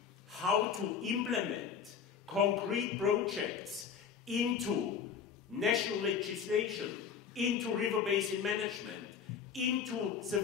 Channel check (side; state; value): right; quieter; 7.0 dB